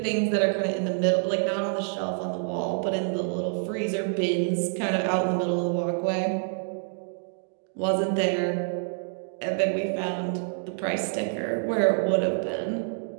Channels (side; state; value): left; silent; digital silence